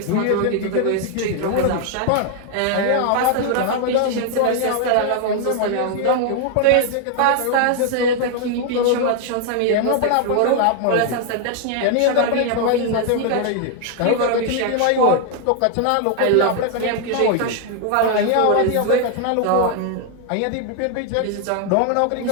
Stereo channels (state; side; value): different; both; correlation 0.00